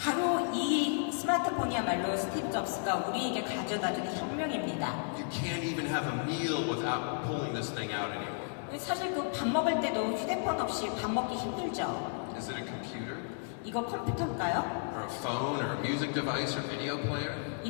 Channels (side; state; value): right; silent; 56 dB below the other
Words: 이 스마트폰이야말로 스티브 잡스가 우리에게 가져다주는 혁명입니다. You can't even have a meal without pulling this thing out anymore. 사실 그 밥 먹을 때도 휴대폰 없이 밥 먹기 힘들죠. Is it a computer? 이거 컴퓨터일까요? Or a phone? Or a music device? Or video player?